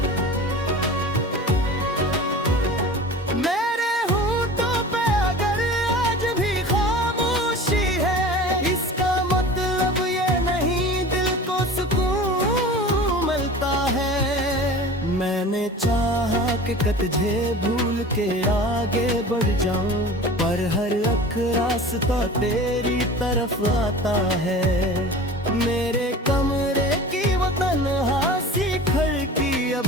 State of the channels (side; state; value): both; normal; correlation 0.38